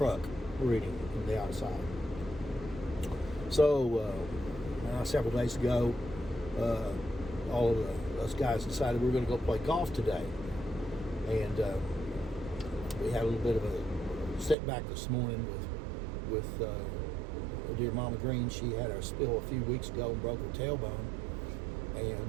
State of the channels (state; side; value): drops out; left; at 14.6 s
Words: reading from the outside. So, several days ago, all of us guys decided we were going to go play golf today. And we had a little bit of a setback this morning with dear Mama Green. She had a spill a few weeks ago and broke her tailbone.